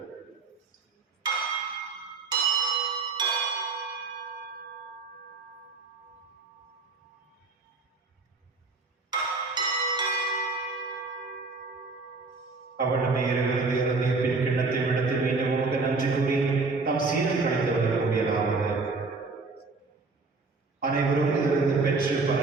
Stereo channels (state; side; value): quieter; left; 4.0 dB